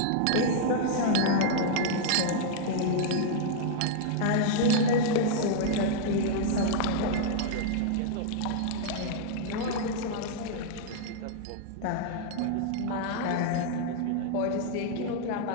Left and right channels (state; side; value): different; both; correlation -0.01